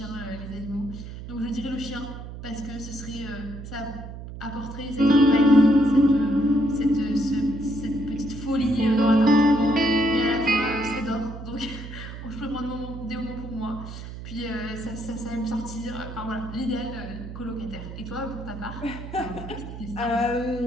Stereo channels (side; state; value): right; noise; hum, 11 dB below the sound